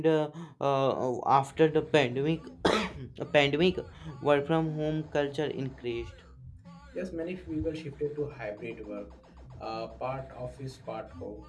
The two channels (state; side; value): identical; both; correlation 1.00